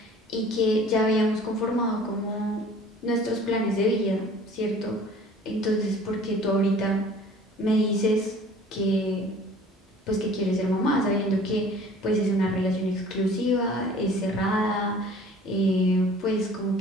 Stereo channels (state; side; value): normal; both; correlation 0.49